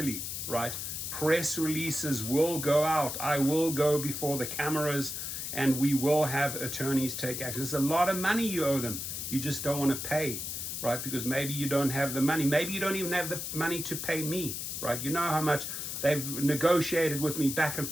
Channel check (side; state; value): left; noise; hiss, 5 dB below the sound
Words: right? Press releases will go out. I will go before the cameras, and we will have attorneys take action. There's a lot of money you owe them. You just don't want to pay, right? Because maybe you don't have the money. Maybe you don't even have the money to pay me, right? You know how much they've negotiated with me back and